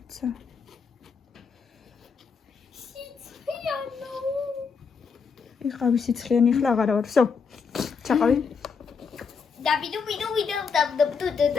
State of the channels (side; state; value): right; quieter; 5.6 dB